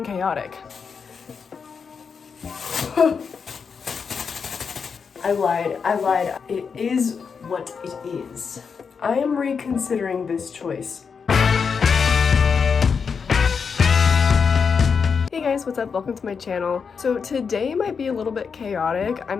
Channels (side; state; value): right; quieter; 5.9 dB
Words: chaotic. I lied. It is what it is. I am reconsidering this choice. Hey guys, what's up? Welcome to my channel. So today might be a little bit chaotic. I'm